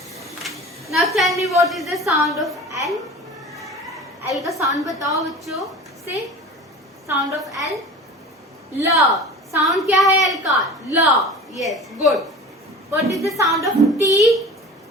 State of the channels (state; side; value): normal; both; correlation 0.38